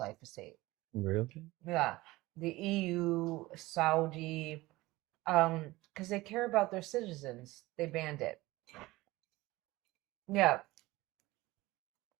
Really? Yeah, the EU, Saudi, because they care about their citizens, they banned it. Yeah,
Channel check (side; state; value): left; quieter; 19.5 dB